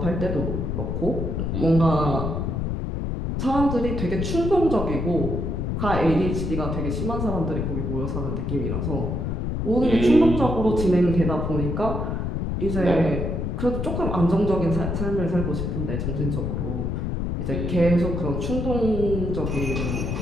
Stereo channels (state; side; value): noise; left; rumble, 2 dB below the sound